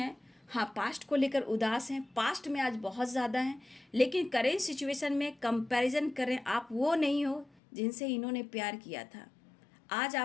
हाँ, पास्ट को लेकर उदास हैं, पास्ट में आज बहुत ज़्यादा हैं, लेकिन करेंट सिचुएशन में कंपैरिजन करें, आप वो नहीं हो जिनसे इन्होंने प्यार किया था। आज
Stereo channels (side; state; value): right; drops out; at 7.5 s